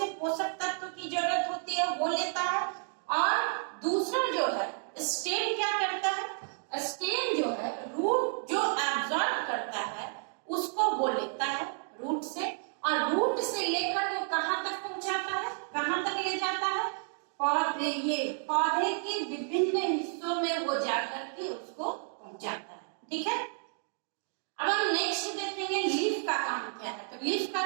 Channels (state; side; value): silent; left; 57 dB below the other